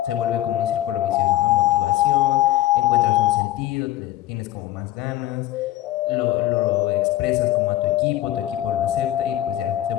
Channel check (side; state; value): right; quieter; 14.4 dB